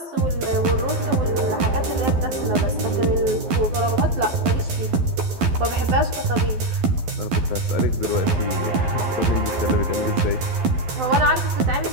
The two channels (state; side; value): late; left; 12 ms